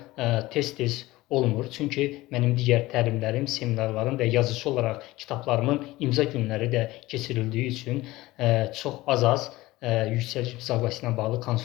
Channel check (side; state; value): right; quieter; 18.7 dB